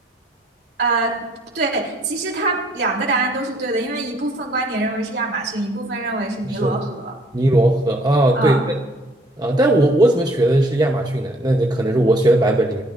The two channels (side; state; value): both; normal; correlation 0.62